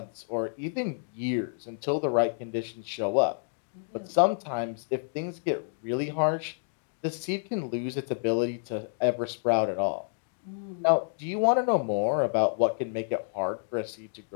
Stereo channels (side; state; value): right; silent; digital silence